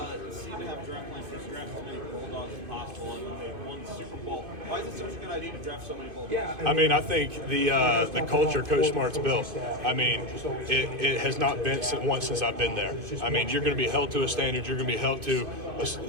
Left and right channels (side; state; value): left; late; 2.5 ms